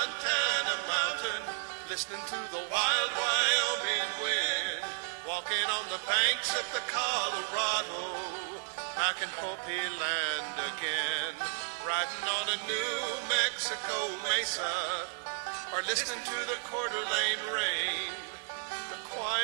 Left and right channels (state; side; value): silent; left; 56 dB below the other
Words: mountain, listening to the wild Wyoming wind, walking on the banks of the Colorado, back in Hopi land again, riding on a New Mexico mesa, or listening to the Coeur d'Alene rain. The